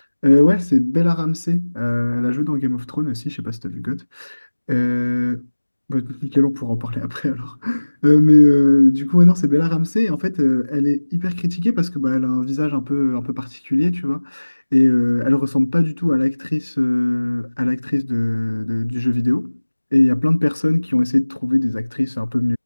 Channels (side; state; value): both; inverted; correlation -1.00